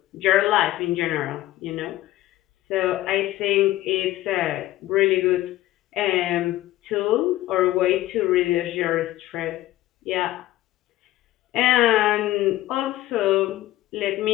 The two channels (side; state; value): right; quieter; 15.5 dB